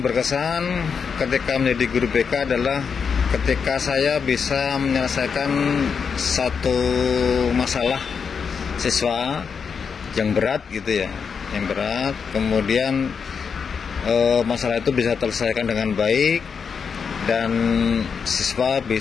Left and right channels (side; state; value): right; quieter; 6.2 dB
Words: berkesan ketika menjadi guru BK adalah ketika saya bisa menyelesaikan satu masalah siswa yang berat gitu ya, yang berat. Kemudian masalah itu bisa terselesaikan dengan baik dan siswa